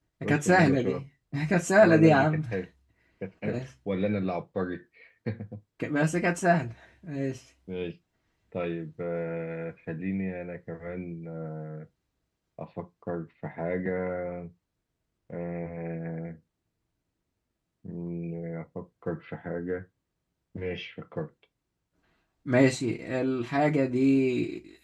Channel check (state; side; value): identical; both; correlation 1.00